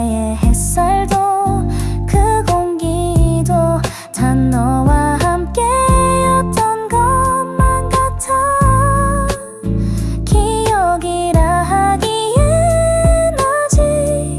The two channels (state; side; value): identical; both; correlation 1.00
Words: 햇살도 그 공기도 다 너와 함께였던 것만 같아 기억이라 하기엔 아직